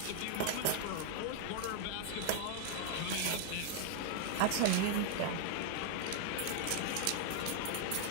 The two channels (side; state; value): both; different; correlation 0.00